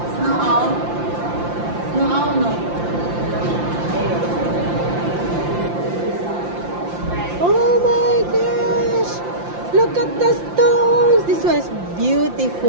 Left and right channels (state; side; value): late; left; 5.8 ms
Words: Snow owl? Snow owl, no? Oh my gosh! Look at the stones! This one is